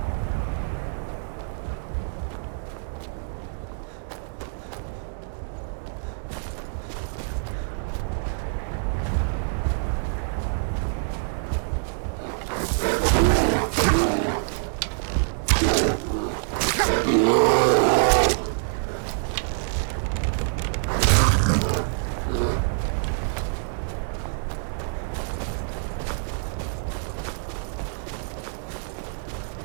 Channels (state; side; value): silent; left; 61 dB below the other